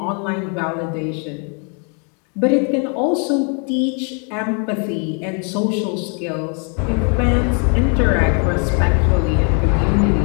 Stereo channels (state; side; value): quieter; right; 38.7 dB